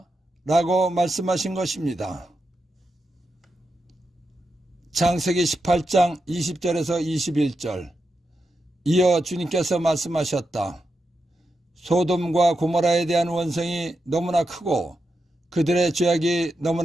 라고 말씀하신 것입니다. 창세기 18장 20절에서 21절. 이어 주님께서 말씀하셨다. 소돔과 고모라에 대한 원성이 너무나 크고 그들의 죄악이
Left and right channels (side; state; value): both; normal; correlation 0.87